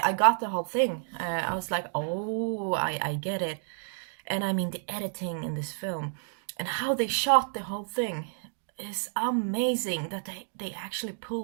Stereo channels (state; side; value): silent; left; digital silence